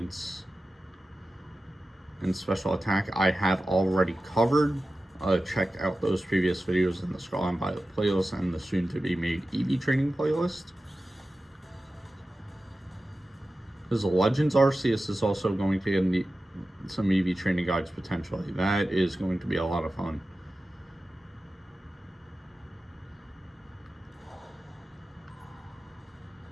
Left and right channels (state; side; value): normal; both; correlation 0.94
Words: and special attack, I have already covered. Check out those previous videos in the Scarlet playlist and the soon-to-be-made EV training playlist. There's a Legends Arceus is also going to get some EV training guides potentially. That is going to be a lot of fun.